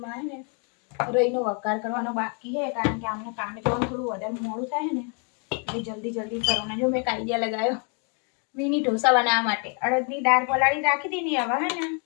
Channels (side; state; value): right; quieter; 37.9 dB